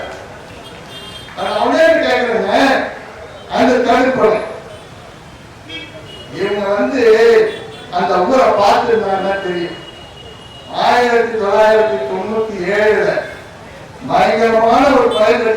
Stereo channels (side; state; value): both; identical; correlation 1.00